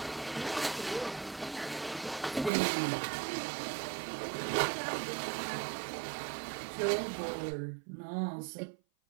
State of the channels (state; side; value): drops out; left; at 2.5 s